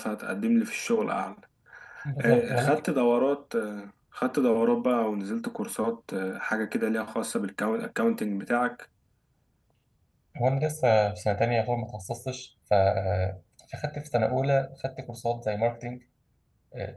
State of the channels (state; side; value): identical; both; correlation 1.00